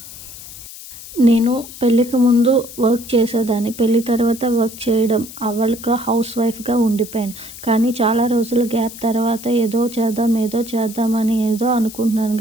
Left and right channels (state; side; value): noise; left; hiss, 15 dB below the sound